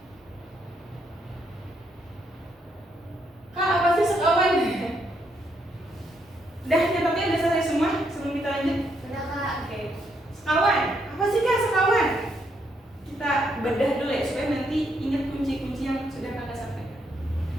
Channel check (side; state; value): both; normal; correlation 0.75